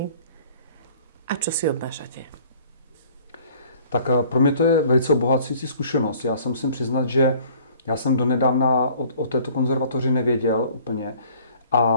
a čo si odnášate? Tak pro mě to je velice obohacující zkušenost. Já se musím přiznat, že já jsem donedávna o této konzervatoři nevěděl úplně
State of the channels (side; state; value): both; inverted; correlation -0.54